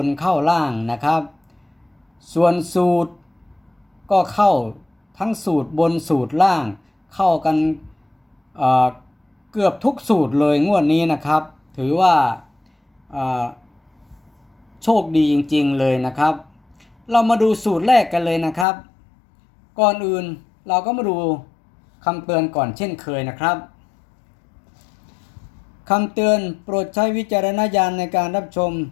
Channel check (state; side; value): drops out; right; at 18.7 s